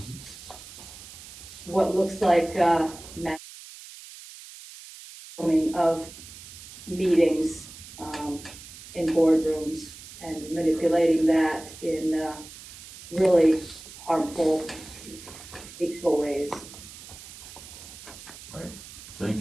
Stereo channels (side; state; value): right; noise; hiss, 16 dB below the sound